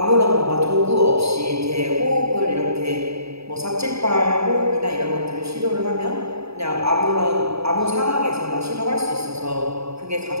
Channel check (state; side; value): late; left; 0.78 ms